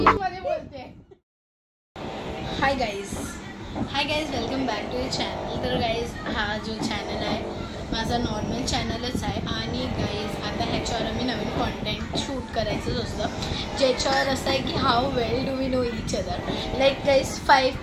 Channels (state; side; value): identical; both; correlation 1.00